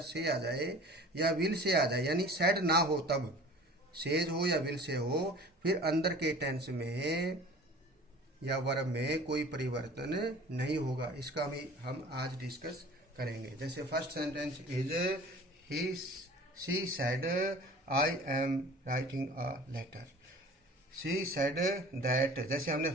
से आ जाए या विल से आ जाए, यानी सेड ना हो, तब सेज हो या विल से हो, फिर अंदर के टेंस में या वर्ब में कोई परिवर्तन नहीं होगा। इसका भी हम आज डिस्कस करेंगे। जैसे first sentence is he she said I am writing a letter. She said that, जैसे हमने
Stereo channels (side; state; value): both; normal; correlation 0.44